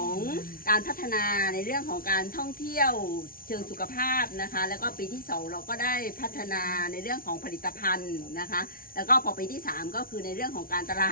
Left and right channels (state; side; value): late; right; 0.43 ms